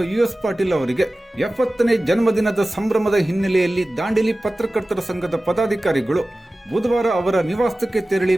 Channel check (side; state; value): both; normal; correlation 0.96